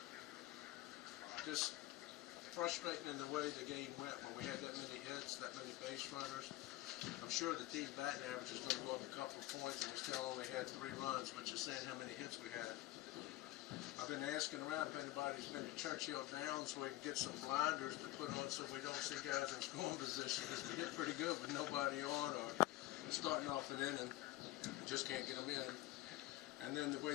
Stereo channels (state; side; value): quieter; right; 16.7 dB